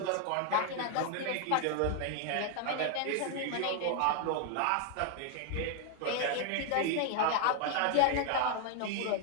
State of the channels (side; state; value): both; different; correlation 0.00